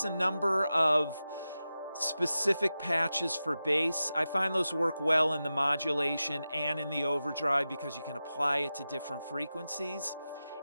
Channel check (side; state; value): both; inverted; correlation -0.92